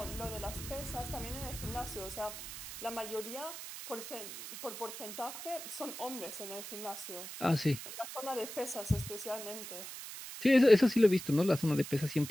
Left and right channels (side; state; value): right; noise; hiss, 10 dB below the sound